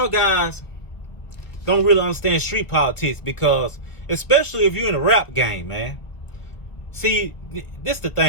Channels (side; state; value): right; late; 1.5 ms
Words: guys don't really understand street politics, because especially if you're in a rap game, man. See, this the